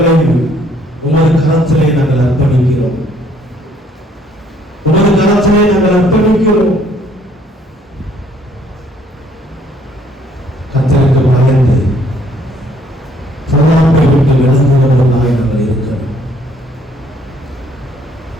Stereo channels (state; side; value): normal; both; correlation 0.64